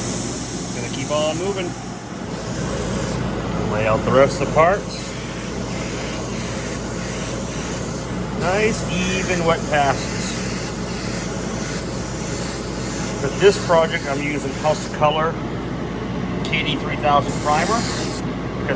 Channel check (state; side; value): identical; both; correlation 1.00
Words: Gonna keep on moving. Lay out the rest of the parts. Nice even wet passes. For this project, I'm using House of Kolor KD3000 primer